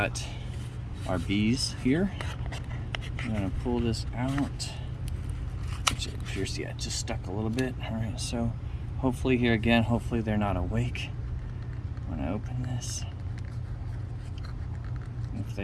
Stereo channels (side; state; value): both; identical; correlation 1.00